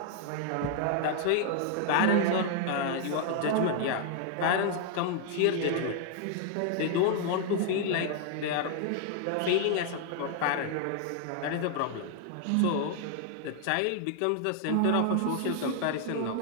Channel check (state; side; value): different; both; correlation 0.00